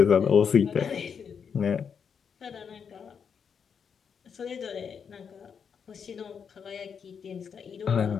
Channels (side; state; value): right; quieter; 6.8 dB